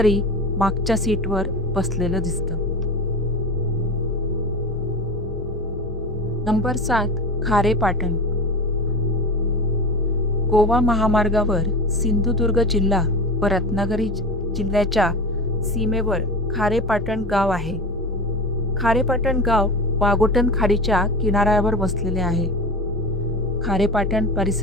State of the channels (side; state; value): both; normal; correlation 0.27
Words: मागच्या सीटवर बसलेलं दिसतं. नंबर 7, खारेपाटण. गोवा महामार्गावर सिंधुदुर्ग जिल्हा व रत्नागिरी जिल्ह्याच्या सीमेवर खारेपाटण गाव आहे. खारेपाटण गाव वाघोटन खाडीच्या किनाऱ्यावर वसलेले आहे. खारेपाटण